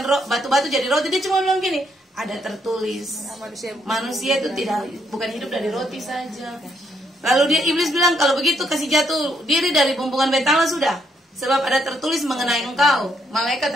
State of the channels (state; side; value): normal; both; correlation 0.74